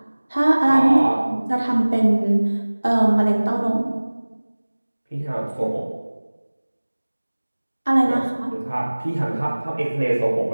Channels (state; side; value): inverted; both; correlation -1.00